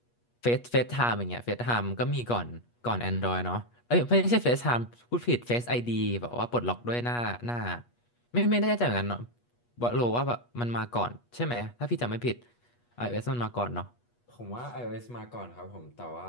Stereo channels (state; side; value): late; right; 8.3 ms